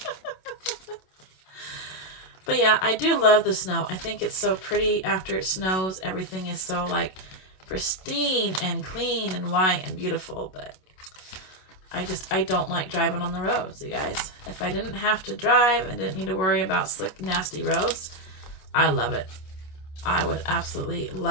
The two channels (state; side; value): late; right; 27 ms